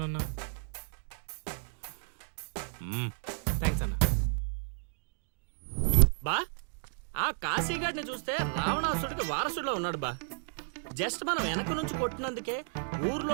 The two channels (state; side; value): silent; left; digital silence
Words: థ్యాంక్స్ అన్నా. బా ఆ కాశీగాడిని చూస్తే రావణాసుడికి వారసుడిలో ఉన్నాడు బా. జస్ట్ మనం వెనక నుంచి కొట్టినందుకే